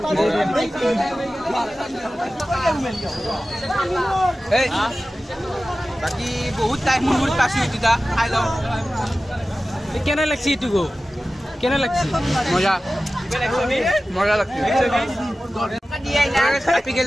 এই বাকি বহুত টাইম মুর পাছি দিদা খাই লও কেনে লাগছি এটো গো কেনে লাগছি মজা লাগছে আপি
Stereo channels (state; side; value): normal; both; correlation 0.95